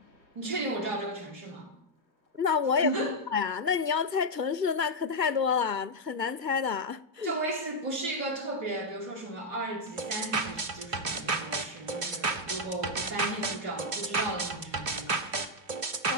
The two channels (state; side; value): late; left; 2.8 ms